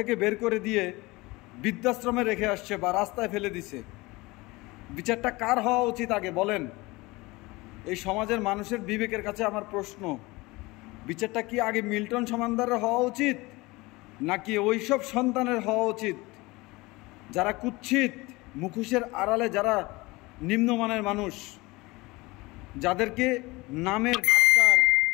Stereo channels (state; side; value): quieter; right; 22.4 dB